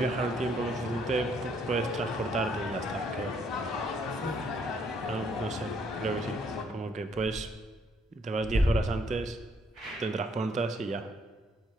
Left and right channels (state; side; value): normal; both; correlation 0.67